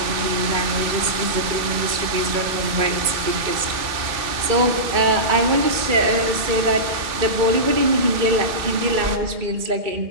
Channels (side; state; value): left; late; 2.3 ms